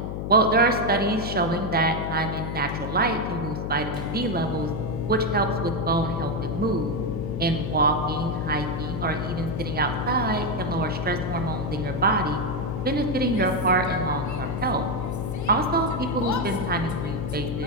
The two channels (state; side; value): noise; left; hum, 4 dB below the sound